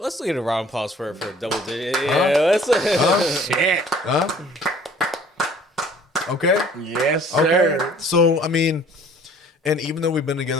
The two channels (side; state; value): both; normal; correlation 0.53